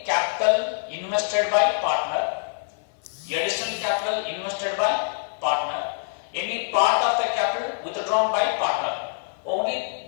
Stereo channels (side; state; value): right; silent; 57 dB below the other